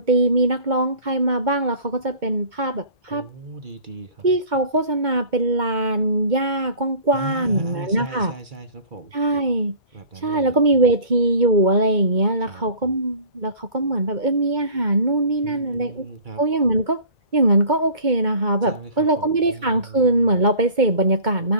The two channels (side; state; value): left; late; 2.2 ms